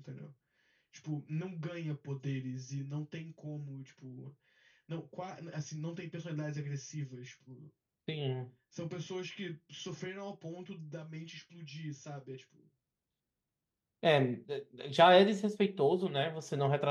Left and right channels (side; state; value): both; identical; correlation 1.00